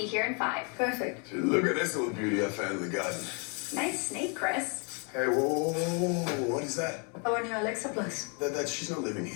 here in 5. Perfect. Look at this little beauty I found in the garden. Nice snake, Chris. Hey, whoa, what is that? Our new Alexa Plus. She's not living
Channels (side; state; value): right; quieter; 36.8 dB